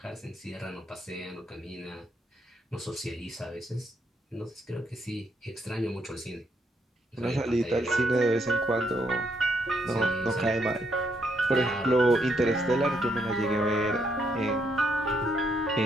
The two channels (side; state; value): both; normal; correlation 0.75